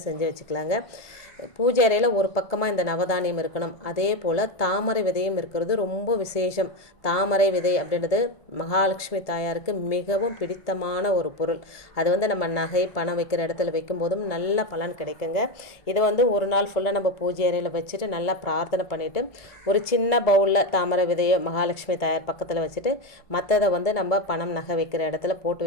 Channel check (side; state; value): right; late; 1.7 ms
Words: செஞ்சு வச்சுக்கலாங்க. பூஜை அறையில் ஒரு பக்கமாக இந்த நவதானியம் இருக்கணும். அதே போல் தாமரை விதையும் இருக்கிறது ரொம்ப விசேஷம். தாமரை விதை அப்படின்றது மகாலட்சுமி தாயாருக்கு மிகவும் பிடித்தமான ஒரு பொருள். அது நம்ம நகை பணம் வைக்கிற இடத்துல வைக்கும்போதும் நல்ல பலன் கிடைக்குங்க. இது ஒரு நாள் ஃபுல்லாக நம்ம பூஜை அறையில் வச்சுட்டு நல்லா பிரார்த்தனை பண்ணிவிட்டு ஒரு சின்ன பவுலில் தாமரை விதையை மகாலட்சுமி தாயார் பக்கத்தில் வச்சுட்டு மற்றதை நம்ம பணம் நகை வைக்கிற இடத்துல போட்டு